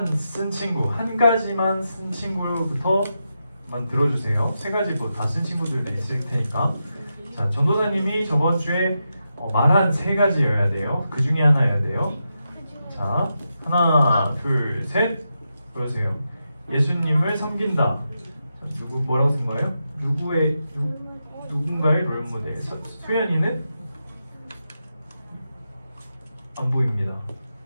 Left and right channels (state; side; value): inverted; both; correlation -0.87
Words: 쓴 친구부터만 들어주세요. 세 가지 뭐 다 쓴 친구들도 있을 테니까. 자, 전도사님이 저번 주에 말한 세 가지여야 돼요. 그 중에 하나여야 돼요. 자, 하나, 둘, 셋. 보여주세요. 예수님을 섬긴다. 누구 뭐라고 쓴 거예요? 누군가의 롤모델. 수연이는 안 보입니다.